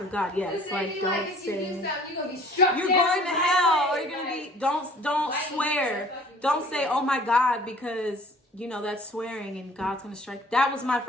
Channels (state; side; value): normal; both; correlation 0.51